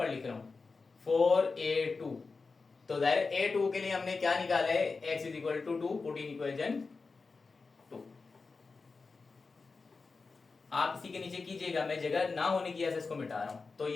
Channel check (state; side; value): quieter; right; 4.3 dB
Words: लिख रहा हूं 4a2 तो जाहिर A2 के लिए हमने क्या निकाला है, x is equal to 2, put in equation 2। आप इसी के नीचे कीजिएगा, मैं जगह ना होने की वजह से इसको मिटा रहा हूं। तो